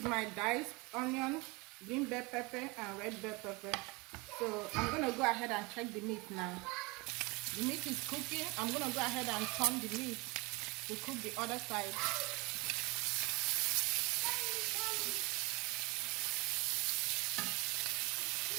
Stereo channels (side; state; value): left; quieter; 26.1 dB